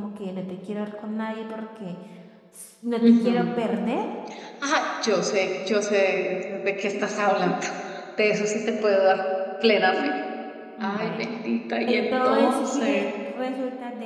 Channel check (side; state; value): both; identical; correlation 1.00